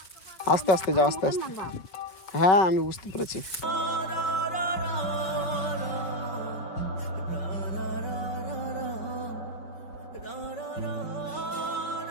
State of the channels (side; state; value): right; late; 5.1 ms